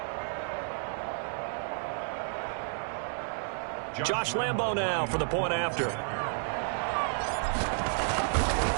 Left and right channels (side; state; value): left; silent; 57 dB below the other